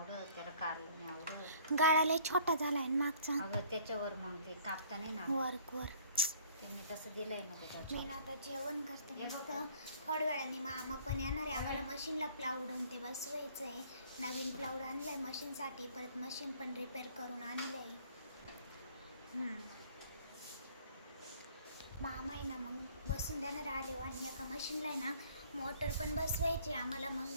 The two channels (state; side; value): inverted; both; correlation -0.56